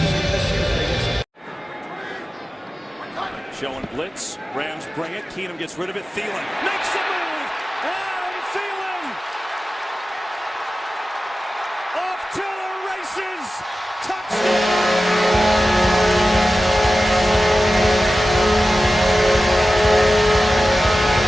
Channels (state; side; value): normal; both; correlation 0.94